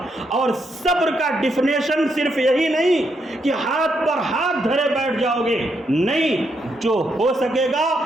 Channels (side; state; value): both; normal; correlation 0.78